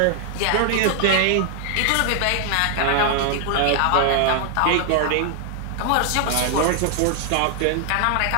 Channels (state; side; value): different; both; correlation 0.00